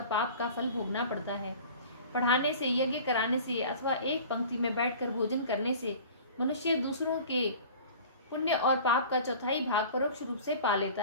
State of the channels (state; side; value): inverted; both; correlation -0.42